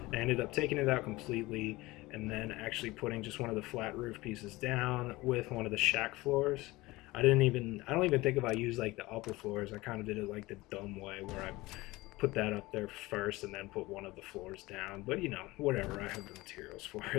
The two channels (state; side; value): quieter; right; 20.4 dB